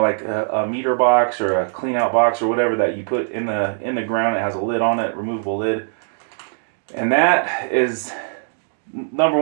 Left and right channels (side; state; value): left; silent; digital silence